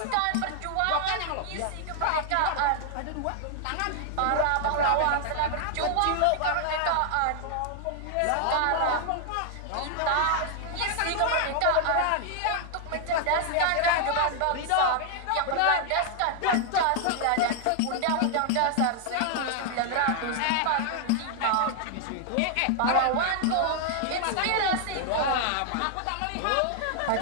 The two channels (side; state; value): both; different; correlation 0.00